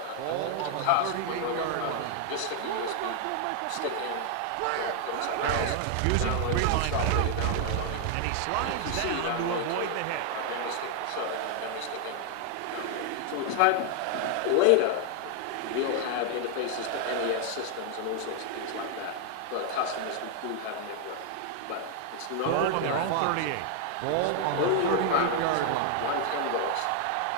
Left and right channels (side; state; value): both; different; correlation 0.00